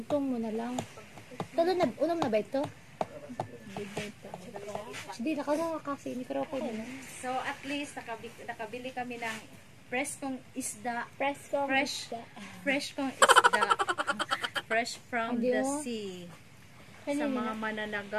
mo na lang. Unom na ba ito? Hindi, nakagawa kasi. Hindi ko ako na. So at least nakabili kami ng preskong isda. Fresh kong isda. Fresh from the sea. Sa mga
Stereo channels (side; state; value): both; identical; correlation 1.00